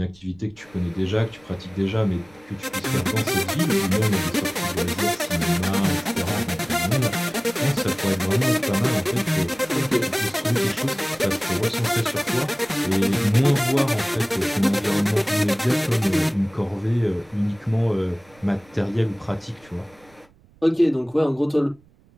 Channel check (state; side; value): noise; right; rumble, 30 dB below the sound